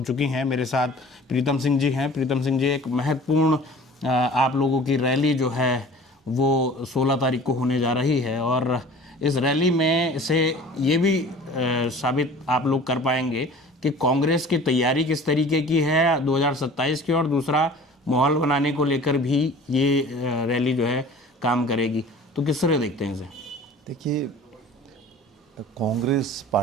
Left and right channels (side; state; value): both; normal; correlation 0.44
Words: चुकी हैं। मेरे साथ प्रीतम सिंह जी हैं। प्रीतम सिंह जी, एक महत्वपूर्ण आप लोगों की रैली जो है वो 16 तारीख को होने जा रही है, और इस रैली में से ये भी साबित आप लोग कर पाएंगे कि कांग्रेस की तैयारी किस तरीके की है 2027 की, और दूसरा माहौल बनाने को लेकर भी ये रैली जो है काम करेगी। तो किस तरह देखते हैं इसे? देखिए, कांग्रेस